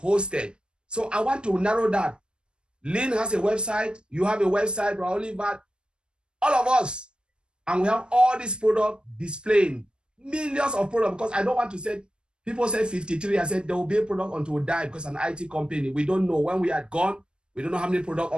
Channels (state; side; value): late; left; 0.054 ms